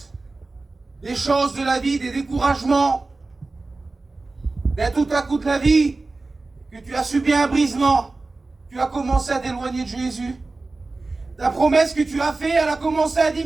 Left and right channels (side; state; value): left; quieter; 3.5 dB